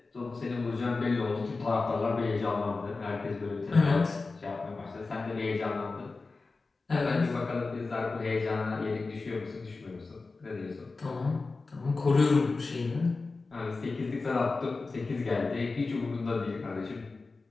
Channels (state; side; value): quieter; right; 3.8 dB